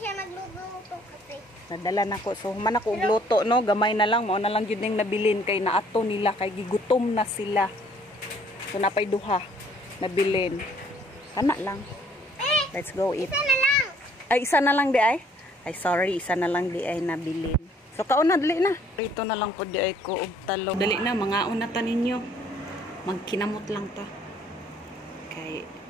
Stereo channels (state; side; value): normal; both; correlation 0.61